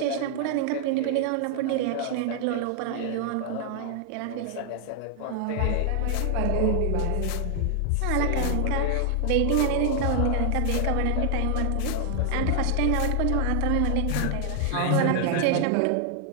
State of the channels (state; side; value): different; both; correlation 0.00